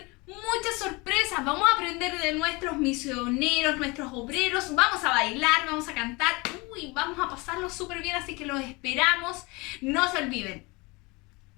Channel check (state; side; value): quieter; right; 25.8 dB